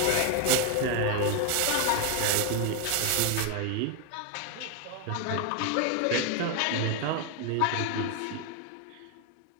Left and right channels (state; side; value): different; both; correlation 0.01